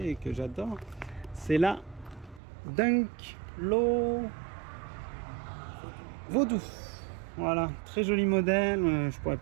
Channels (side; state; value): left; drops out; at 2.4 s